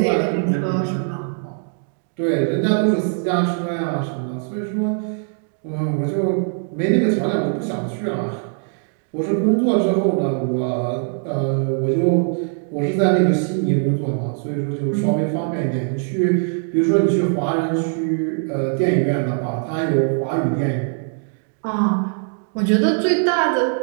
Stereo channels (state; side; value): silent; left; 58 dB below the other